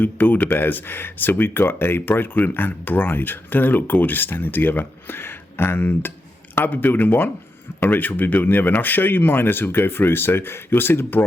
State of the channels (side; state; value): both; normal; correlation 0.86